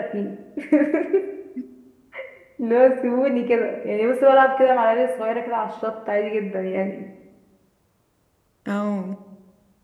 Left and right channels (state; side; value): identical; both; correlation 1.00